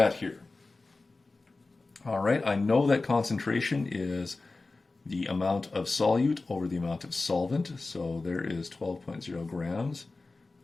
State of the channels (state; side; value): quieter; right; 3.5 dB